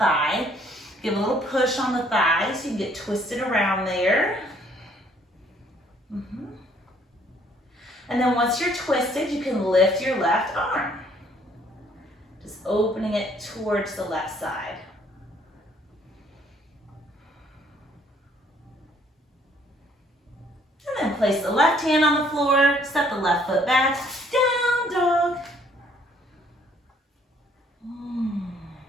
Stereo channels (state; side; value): normal; both; correlation 0.63